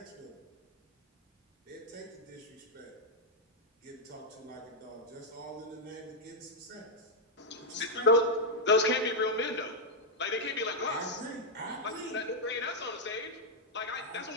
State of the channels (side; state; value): both; normal; correlation -0.02